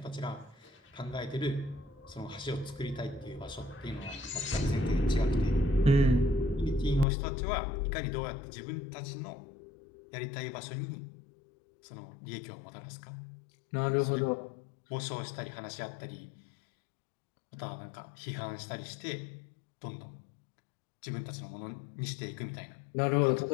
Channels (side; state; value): right; drops out; at 7.1 s